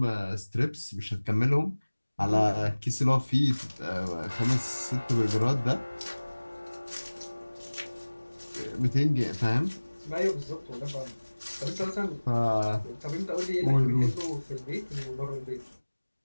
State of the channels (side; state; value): both; inverted; correlation -1.00